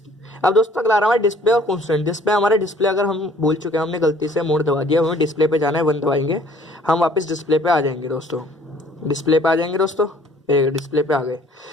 अब दोस्तों अगला आ रहा है डिस्प्ले और कॉन्स्टेंट। डिस्प्ले हमारे डिस्प्ले अगर हम भूल चुके हैं, हमने गलती से मोड दबा दिया, हमें डिस्प्ले पे जाना है, 1 दबाएंगे, हम वापस डिस्प्ले पे आ जाएंगे दोस्तों। डिस्प्ले पे आ जाएंगे दोस्तों, डिस्प्ले पे आ गए।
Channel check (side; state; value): both; normal; correlation 0.56